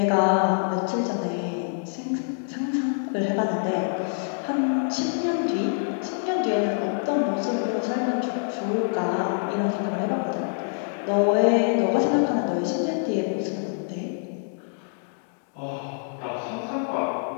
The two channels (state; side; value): silent; right; digital silence